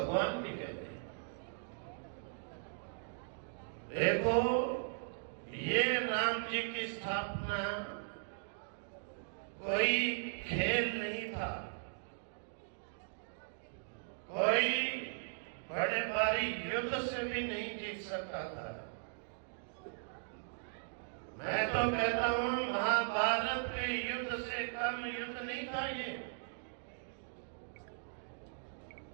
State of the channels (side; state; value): left; silent; digital silence